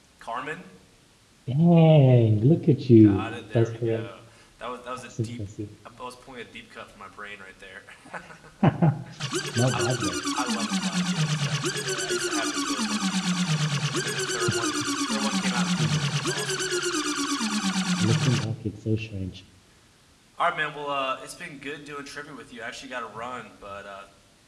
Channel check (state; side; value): identical; both; correlation 1.00